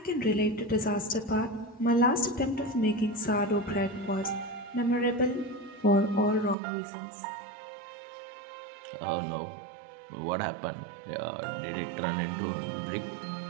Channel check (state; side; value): drops out; left; at 6.6 s